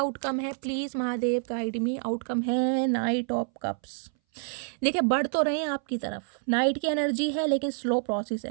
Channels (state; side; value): silent; left; 59 dB below the other